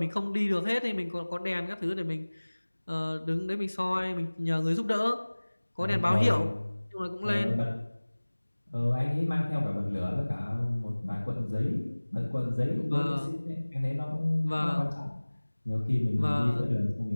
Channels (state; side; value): inverted; both; correlation -1.00